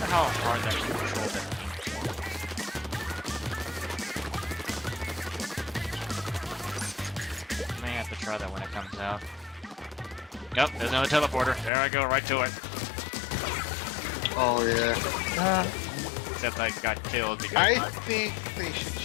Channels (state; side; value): drops out; right; at 11.7 s